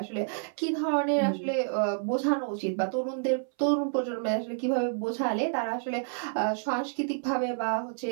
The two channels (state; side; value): silent; left; 59 dB below the other